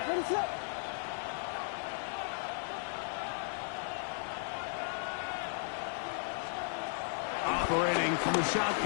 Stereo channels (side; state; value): right; silent; digital silence